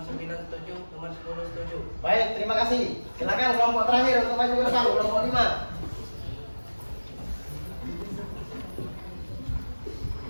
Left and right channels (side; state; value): both; inverted; correlation -1.00